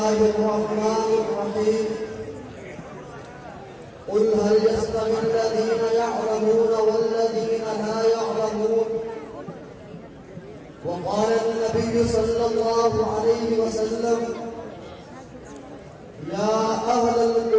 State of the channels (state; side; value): identical; both; correlation 1.00